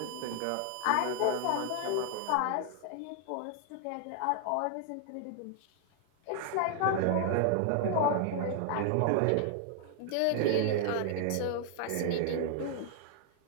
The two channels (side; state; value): both; different; correlation 0.00